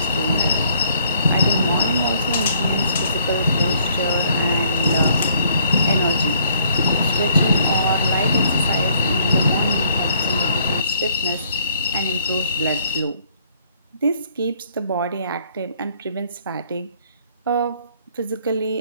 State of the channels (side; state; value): both; inverted; correlation -0.63